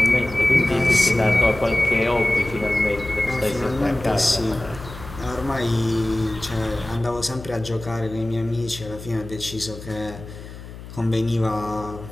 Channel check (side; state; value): left; noise; hum, 14 dB below the sound